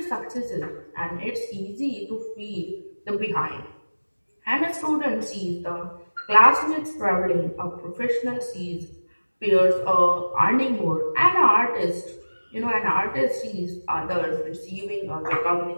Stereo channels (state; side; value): inverted; both; correlation -1.00